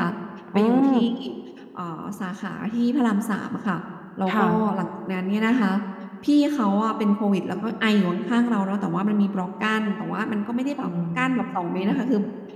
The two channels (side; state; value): both; identical; correlation 1.00